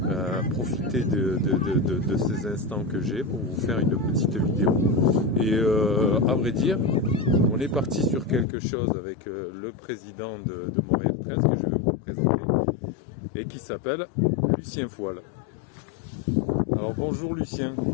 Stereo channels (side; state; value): right; drops out; at 8.5 s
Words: profiter de ces instants que j'ai pour vous faire une petite vidéo. Et à vrai dire, on est parti sur quelque chose avec le président de Montréal 13 que je vais vous présenter et qui s'appelle Lucien Foile. Alors bonjour Lucien,